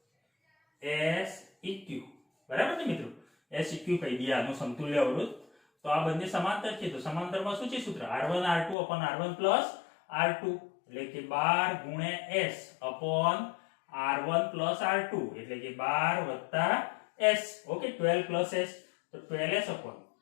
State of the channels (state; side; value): drops out; right; at 8.8 s